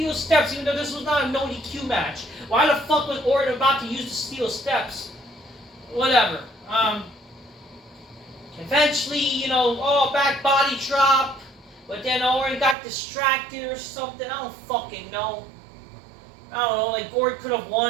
steps, even though this was not a no DQ match. Why the fuck was Orton about to use the steel steps? Whatever. Eventually, you know, back body drop. But then Orton got distracted or something. I don't fucking know. I don't know, like Orton could have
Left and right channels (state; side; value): drops out; left; at 12.8 s